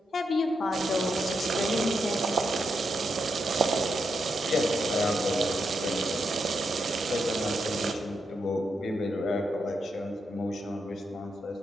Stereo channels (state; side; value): normal; both; correlation 0.83